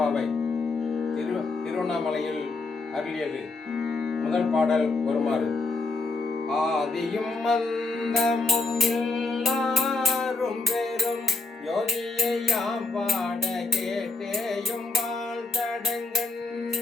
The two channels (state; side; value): quieter; right; 3.5 dB